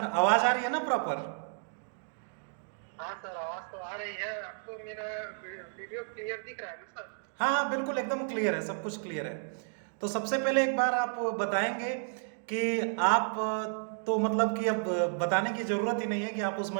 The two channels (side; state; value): left; silent; digital silence